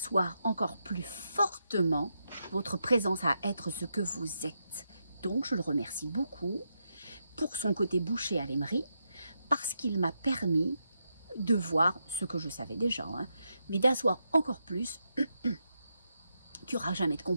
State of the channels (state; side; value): inverted; both; correlation -0.84